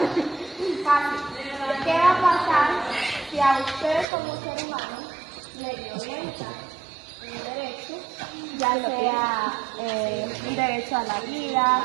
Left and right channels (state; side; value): drops out; left; at 4.0 s